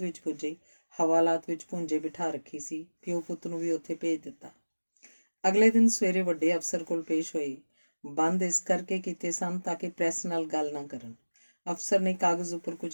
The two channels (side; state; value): both; inverted; correlation -1.00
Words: ਵਿੱਚ ਪੁੱਜੇ। ਹਵਾਲਾਤ ਵਿੱਚ ਭੁੰਜੇ ਬਿਠਾ ਰੱਖੀ ਸੀ। ਪਿਓ ਪੁੱਤ ਨੂੰ ਵੀ ਉੱਥੇ ਭੇਜ ਦਿੱਤਾ। ਅਗਲੇ ਦਿਨ ਸਵੇਰੇ ਵੱਡੇ ਅਫਸਰ ਕੋਲ ਪੇਸ਼ ਹੋਏ। ਬੰਦ ਇਸ ਕਰਕੇ ਕੀਤੇ ਸਨ ਤਾਂ ਕਿ ਪ੍ਰੈਸ ਨਾਲ ਗੱਲ ਨਾ ਕਰਨ। ਅਫਸਰ ਨੇ ਕਾਗਜ਼ ਉੱਪਰ